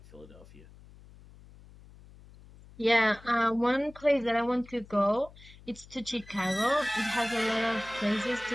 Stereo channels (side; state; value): left; noise; hum, 22 dB below the sound